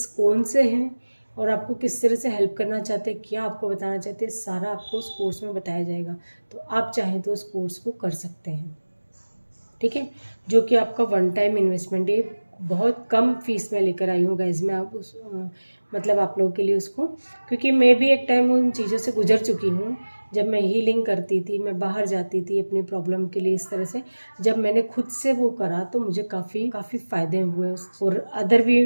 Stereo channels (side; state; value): both; inverted; correlation -1.00